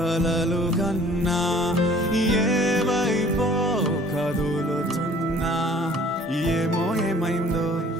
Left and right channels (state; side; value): normal; both; correlation 0.53